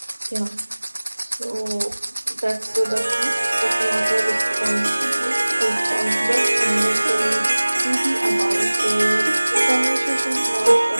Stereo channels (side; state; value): both; inverted; correlation -1.00